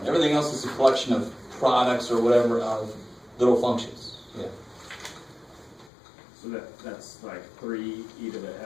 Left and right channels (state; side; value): drops out; right; at 5.9 s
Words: Everything else is a collection of products or whatever of little functions. Yeah. So that's like 3 e to the